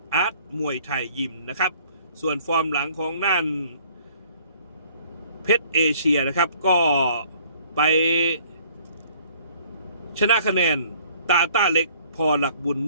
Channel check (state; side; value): inverted; both; correlation -0.57